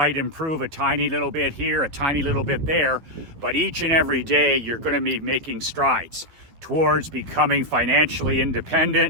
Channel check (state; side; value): late; left; 12 ms